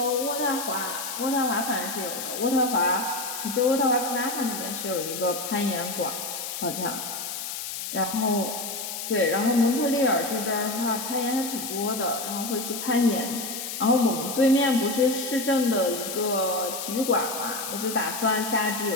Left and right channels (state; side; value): noise; left; hiss, 6 dB below the sound